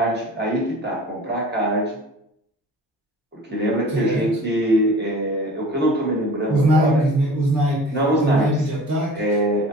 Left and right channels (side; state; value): both; normal; correlation 0.42